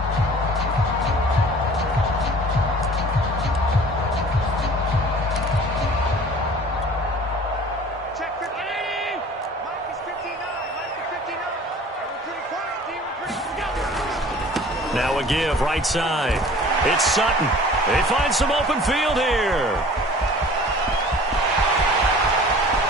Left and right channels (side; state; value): both; normal; correlation 0.46